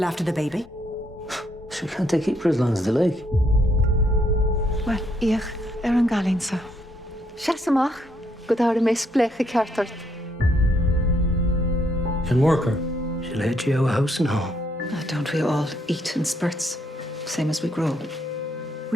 after the baby? She can't they keep her as long as they like? Wel, ich an galinsa. Siasamach, go dáir a mes blecha ceartart. Can work her. She'll head you out of house and home. Oh, don't we all eat in spurts, same as we grow?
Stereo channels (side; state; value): both; normal; correlation 0.73